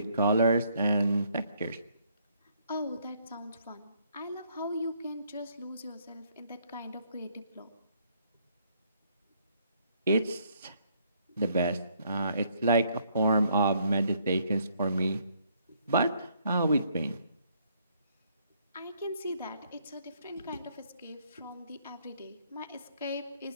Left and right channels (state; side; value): inverted; both; correlation -0.68